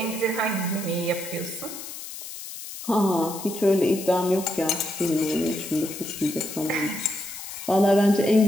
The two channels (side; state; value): left; noise; hiss, 11 dB below the sound